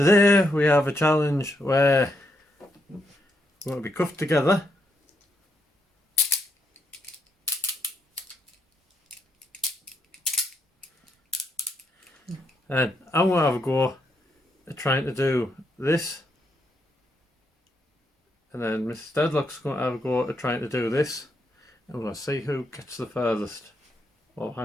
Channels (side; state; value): both; normal; correlation 0.79